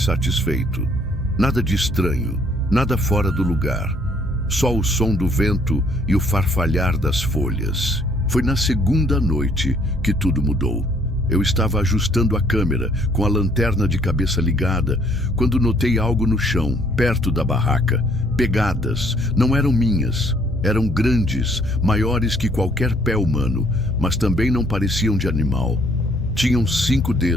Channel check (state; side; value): normal; both; correlation 0.63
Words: satisfeito. Nada de estranho, nada fora do lugar. Só o som do vento e o farfalhar das folhas. Foi na segunda noite que tudo mudou. Eu estava ajustando a câmera, com a lanterna de cabeça ligada, quando notei algo no chão, perto da barraca. Pegadas, não eram minhas. Eram grandes, maiores que qualquer pé humano, mas também não pareciam de animal. Tinham 5